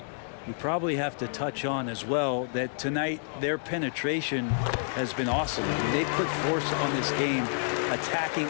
We probably have to touch on as well that tonight their penetration has been awesome. I mean, they put force on this game, attacking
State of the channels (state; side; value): silent; right; digital silence